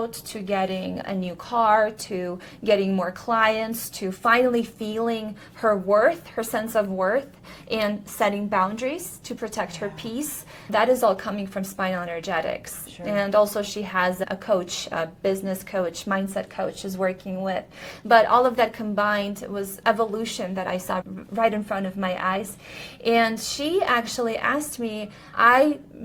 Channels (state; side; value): identical; both; correlation 1.00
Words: to getting a new car, to getting more clients, to finally feeling her worth, her sense of worth, and setting boundaries to protect her peace. That is all coming from spinal energetics. Sure. And also she has a coach, a business coach, mindset coach she's working with. But all of that combined was evolution that I saw right in front of my eyes. And she actually asked me, I'm